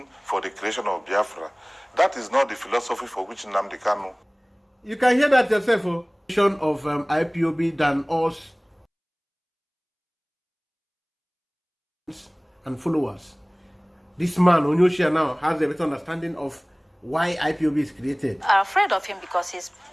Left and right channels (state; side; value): identical; both; correlation 1.00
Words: for the creation of Biafra. That is not the philosophy for which Nnamdi Kanu. You can hear that yourself, of IPOB than us and followers. This man, Onyoshia, now has a better understanding of why IPOB is created. Are afraid of him because he's